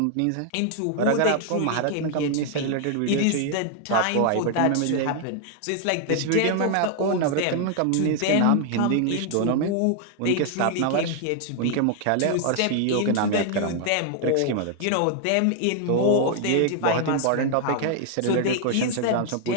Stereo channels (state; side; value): different; both; correlation 0.00